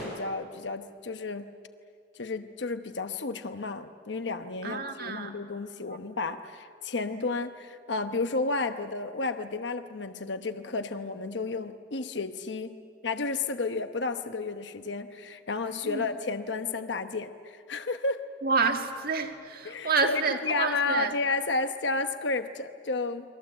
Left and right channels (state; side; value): normal; both; correlation -0.16